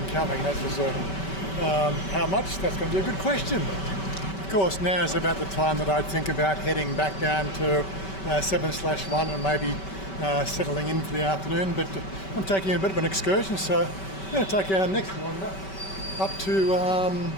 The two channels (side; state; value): right; late; 5.2 ms